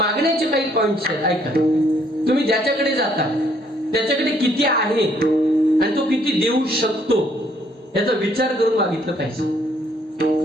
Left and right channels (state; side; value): normal; both; correlation 0.66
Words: काही पॉइंट्स आहेत. ऐका, तुम्ही ज्याच्याकडे जाता त्याच्याकडे किती आहे आणि तो किती देऊ शकतो याचा विचार करून मागितलं पाहिजे.